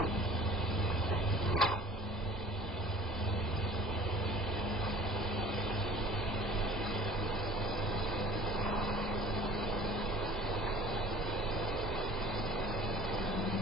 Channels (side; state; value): both; normal; correlation 0.47